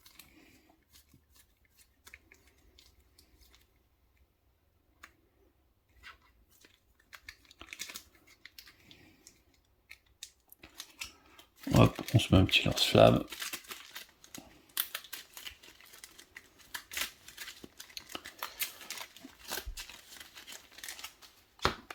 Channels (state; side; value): identical; both; correlation 1.00